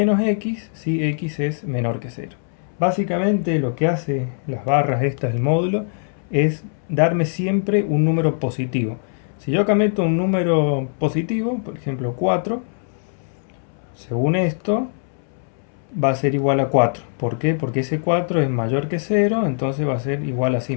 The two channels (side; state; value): right; silent; 64 dB below the other